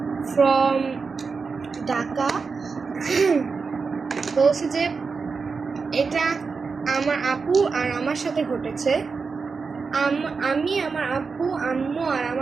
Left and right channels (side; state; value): left; quieter; 4.9 dB